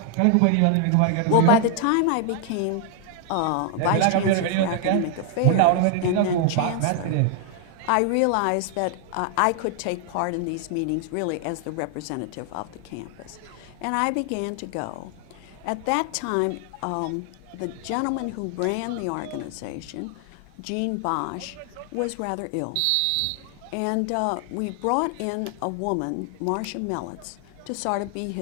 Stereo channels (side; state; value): both; different; correlation 0.00